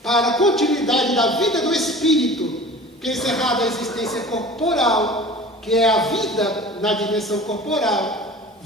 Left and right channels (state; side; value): normal; both; correlation 0.40